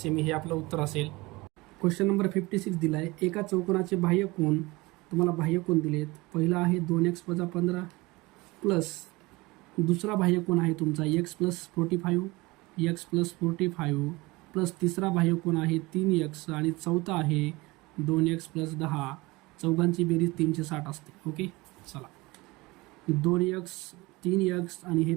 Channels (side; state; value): left; quieter; 22.5 dB